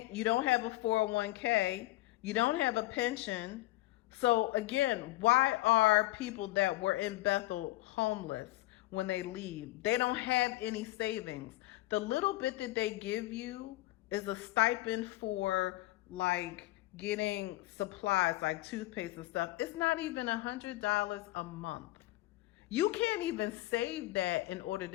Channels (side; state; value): right; quieter; 18.2 dB